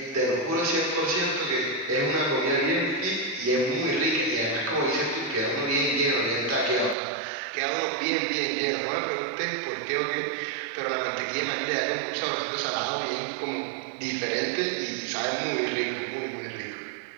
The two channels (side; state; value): left; drops out; at 7.0 s